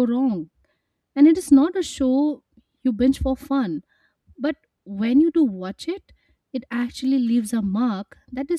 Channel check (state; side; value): identical; both; correlation 1.00